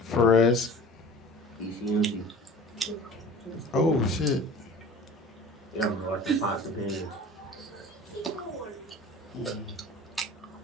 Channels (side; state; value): both; normal; correlation 0.42